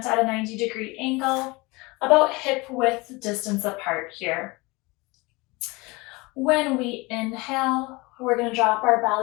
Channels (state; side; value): quieter; right; 24.4 dB